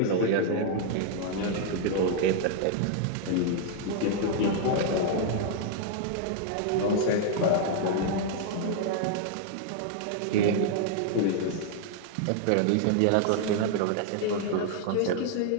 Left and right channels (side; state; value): both; different; correlation 0.00